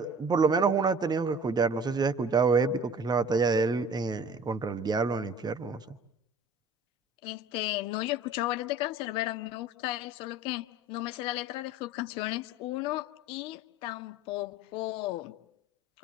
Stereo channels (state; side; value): normal; both; correlation 0.45